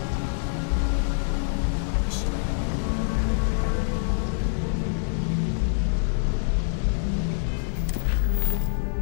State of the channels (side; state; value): right; silent; digital silence